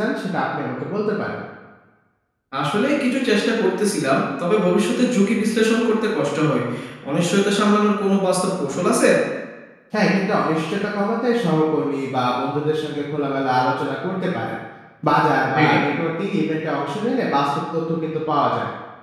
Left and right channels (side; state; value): both; identical; correlation 1.00